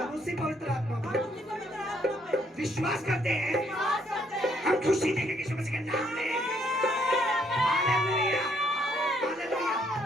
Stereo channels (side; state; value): both; normal; correlation 0.69